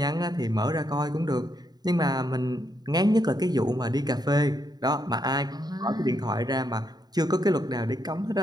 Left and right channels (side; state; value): left; late; 0.20 ms